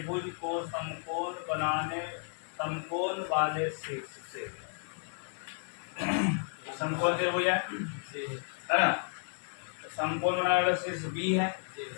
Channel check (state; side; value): silent; right; 56 dB below the other